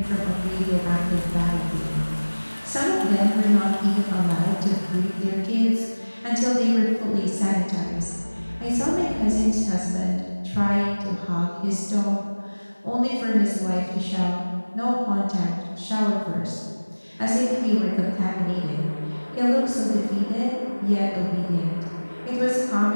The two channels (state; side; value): inverted; both; correlation -1.00